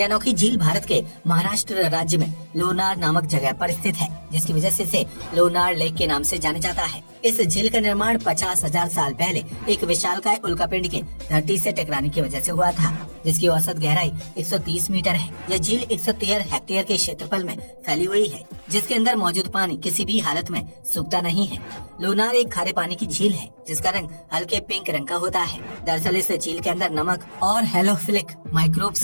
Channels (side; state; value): both; inverted; correlation -1.00